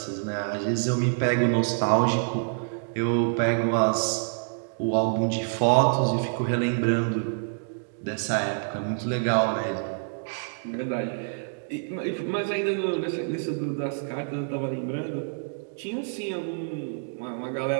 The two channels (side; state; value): left; silent; digital silence